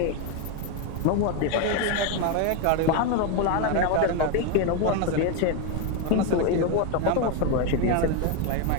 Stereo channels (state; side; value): different; both; correlation 0.02